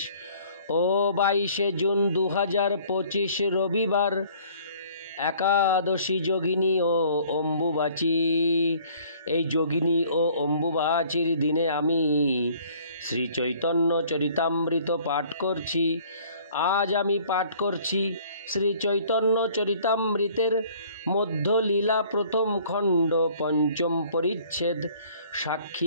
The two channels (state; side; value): inverted; both; correlation -0.55